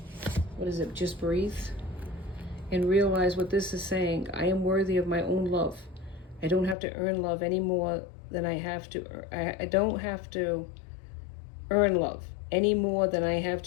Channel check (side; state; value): right; drops out; at 6.8 s